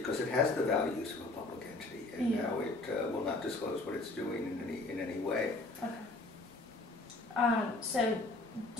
it has the values of a public entity, and now it will not disclose what it's doing in any way. Okay. So,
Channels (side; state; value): right; quieter; 3.1 dB